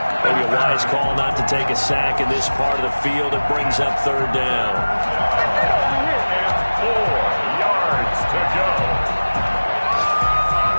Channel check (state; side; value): inverted; both; correlation -1.00